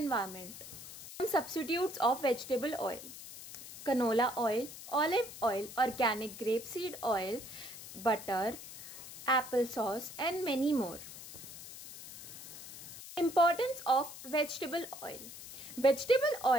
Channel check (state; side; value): noise; left; hiss, 13 dB below the sound